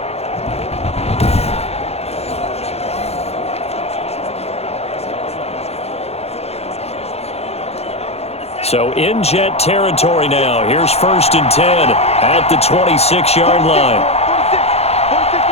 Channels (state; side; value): late; right; 0.30 ms